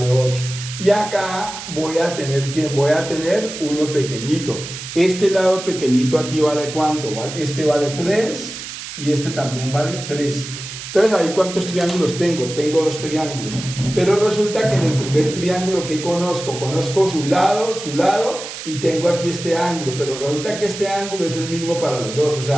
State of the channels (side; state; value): right; noise; hiss, 10 dB below the sound